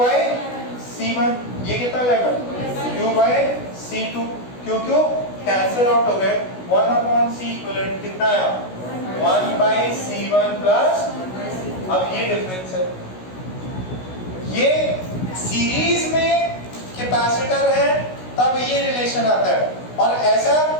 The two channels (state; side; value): late; right; 16 ms